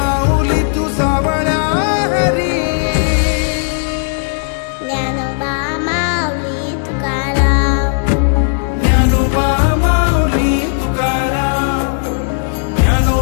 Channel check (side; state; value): right; silent; 57 dB below the other